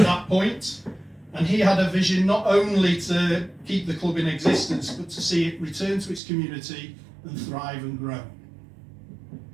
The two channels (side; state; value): left; drops out; at 6.2 s